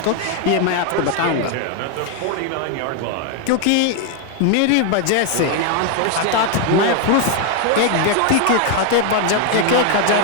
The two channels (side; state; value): both; different; correlation 0.00